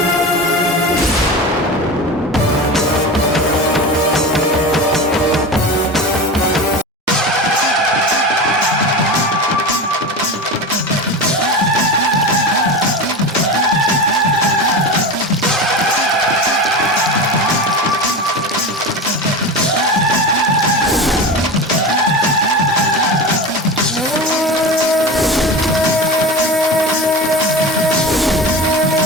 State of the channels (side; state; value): both; normal; correlation 0.27